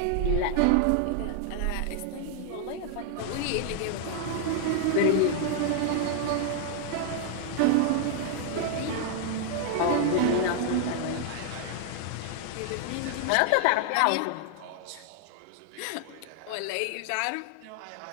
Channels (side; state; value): both; different; correlation 0.00